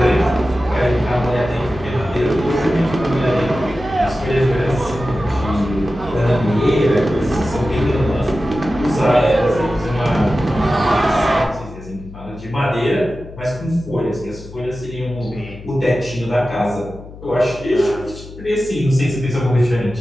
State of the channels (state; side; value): noise; left; hum, 16 dB below the sound